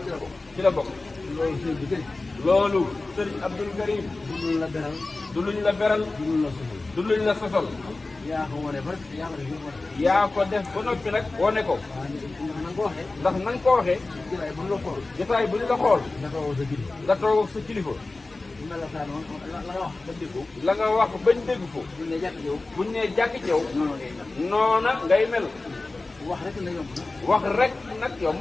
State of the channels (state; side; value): quieter; right; 3.3 dB